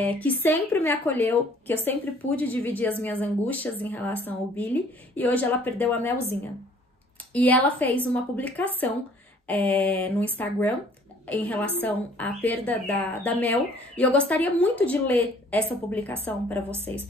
que sempre me acolheu, que eu sempre pude dividir as minhas angústias em relação ao Billy, e hoje ela perdeu a Melzinha. E ela fez uma publicação no Instagram em relação à perda da Mel, e eu gostaria muito de ler essa publicação para vocês.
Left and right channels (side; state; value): both; normal; correlation 0.56